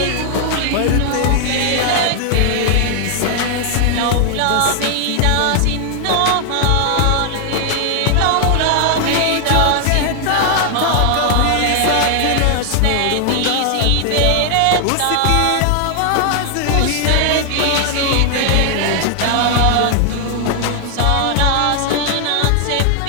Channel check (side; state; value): both; different; correlation 0.00